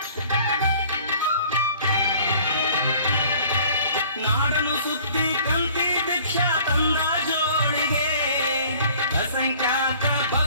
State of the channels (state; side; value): inverted; both; correlation -0.52